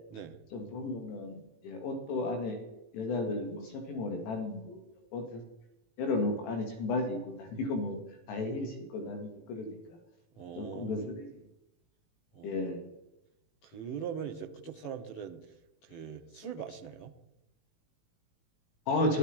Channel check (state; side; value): late; right; 18 ms